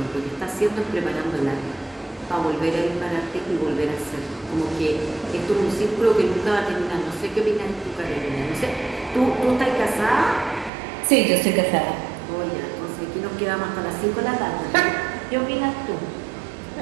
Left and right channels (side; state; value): left; drops out; at 10.7 s